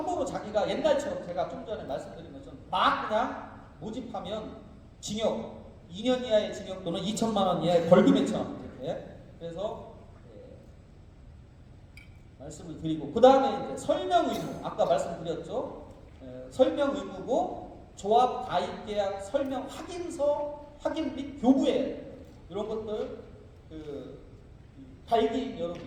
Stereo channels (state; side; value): identical; both; correlation 1.00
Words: 자기가 옛날처럼 제가 좀 전에 말씀드린 것처럼 막 그냥 모집하면 징역 2년 이하의 징역 또는 2천만 원 이하의 벌금에 처합니다. 이렇게. 그래서 말씀을 드리고 그 다음에 이제 설명 의무 아까 말씀드렸죠. 설명 의무고 조합 가입 계약 설명 확인서 확인 및 교부에 이런 것들 발기인